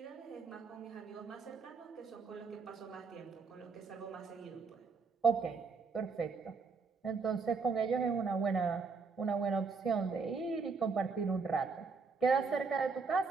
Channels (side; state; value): left; quieter; 4.8 dB